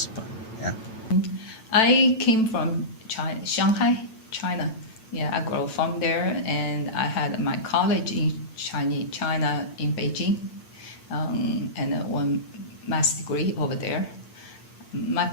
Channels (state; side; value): late; right; 9.1 ms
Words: but yeah. I came from Shanghai, China. Yeah, I grew from there, and I had my college in China in Beijing, and one master's degree over there. My